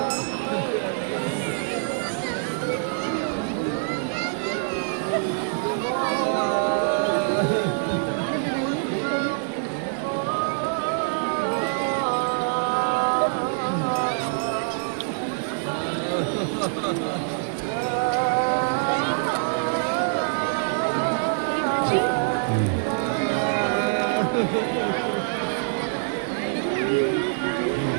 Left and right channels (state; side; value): silent; left; digital silence